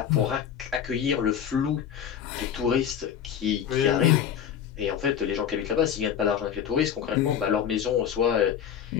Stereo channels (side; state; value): right; quieter; 8.8 dB